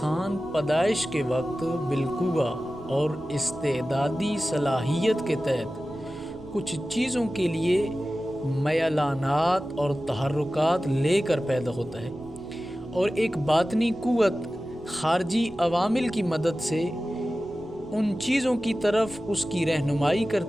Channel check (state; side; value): noise; right; rumble, 22 dB below the sound